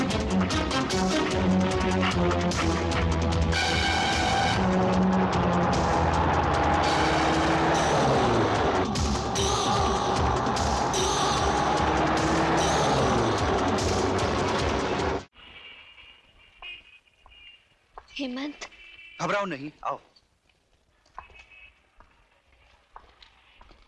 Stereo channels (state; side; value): identical; both; correlation 1.00